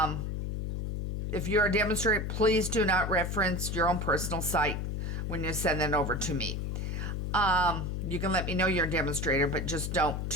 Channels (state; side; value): noise; left; hum, 2 dB below the sound